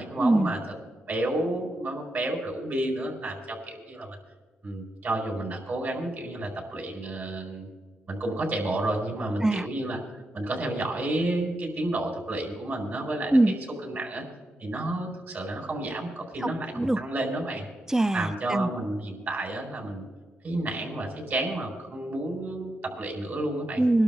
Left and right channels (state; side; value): normal; both; correlation 0.86